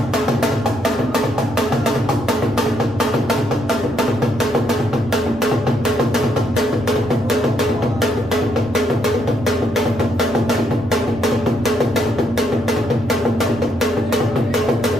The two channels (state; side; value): noise; left; hum, 20 dB below the sound